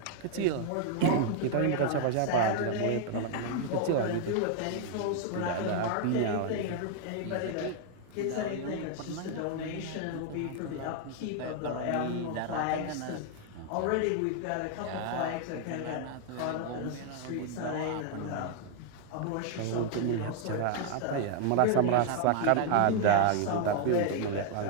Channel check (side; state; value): both; different; correlation 0.00